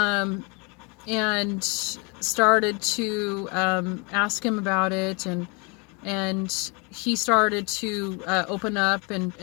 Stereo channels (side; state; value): right; quieter; 30.9 dB